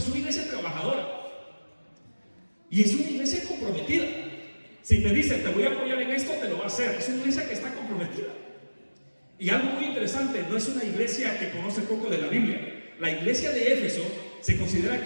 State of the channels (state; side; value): inverted; both; correlation -1.00